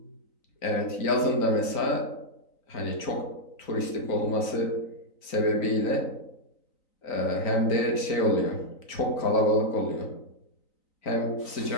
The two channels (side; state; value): right; late; 3.9 ms